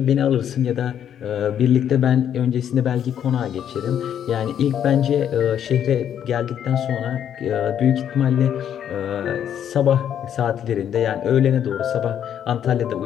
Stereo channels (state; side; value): quieter; right; 9.5 dB